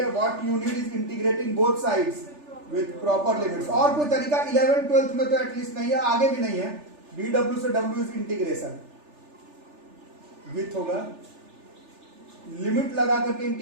what you need is integrating both sides with proper limits. और कोई तरीका 11th 12th में तो एटलीस्ट नहीं है, आगे भी नहीं है। dw से w इज इंटीग्रेशन विथ होगा, लिमिट लगा करके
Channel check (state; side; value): late; left; 3.4 ms